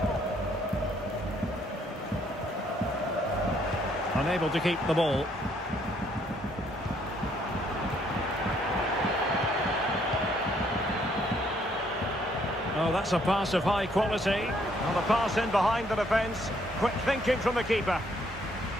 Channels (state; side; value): normal; both; correlation 0.68